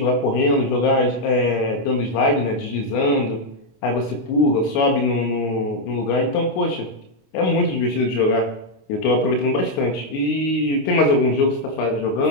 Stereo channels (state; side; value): late; right; 26 ms